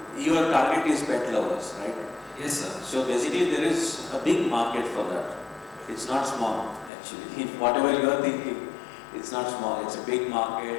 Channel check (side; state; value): right; drops out; at 6.9 s